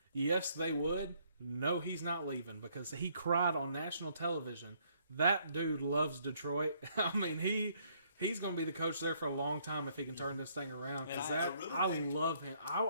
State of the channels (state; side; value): inverted; both; correlation -0.67